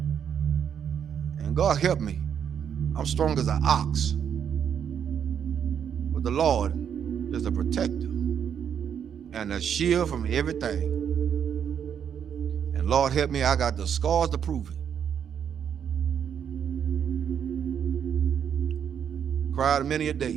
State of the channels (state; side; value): quieter; left; 8.3 dB